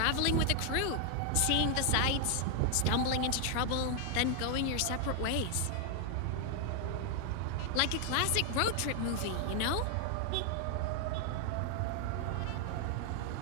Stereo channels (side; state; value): both; different; correlation 0.00